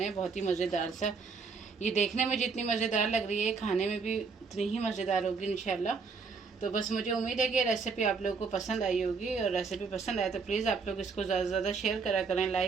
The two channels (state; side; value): quieter; left; 5.0 dB